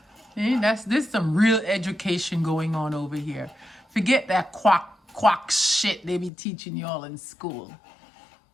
There's some real education going on over here. Forget that quack shit they be teaching y'all in school.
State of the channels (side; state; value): right; drops out; at 6.3 s